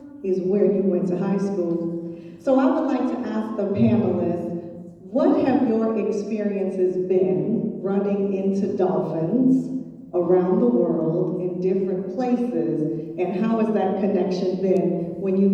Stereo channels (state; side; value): identical; both; correlation 1.00